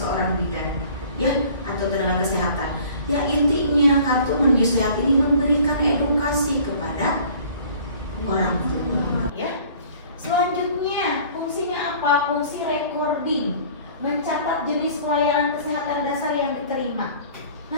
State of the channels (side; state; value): both; inverted; correlation -0.50